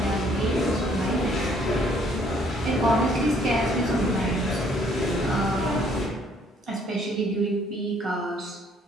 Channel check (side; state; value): both; normal; correlation 0.63